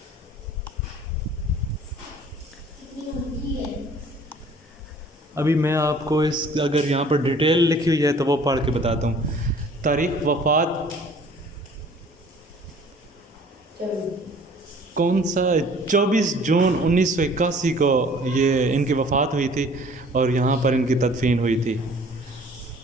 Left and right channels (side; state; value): both; normal; correlation 0.52